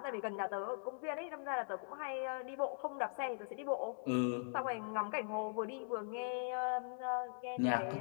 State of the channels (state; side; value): silent; right; digital silence